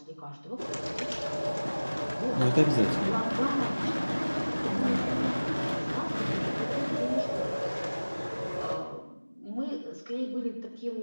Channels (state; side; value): inverted; both; correlation -1.00